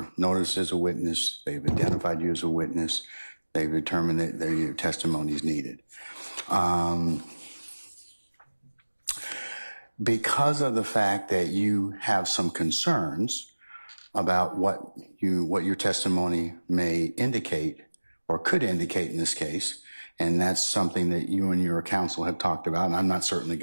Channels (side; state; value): both; inverted; correlation -1.00